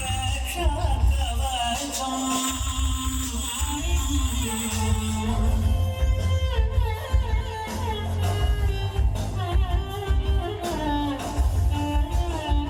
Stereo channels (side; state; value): both; identical; correlation 1.00